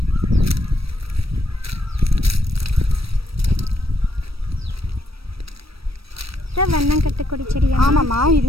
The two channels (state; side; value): late; left; 0.76 ms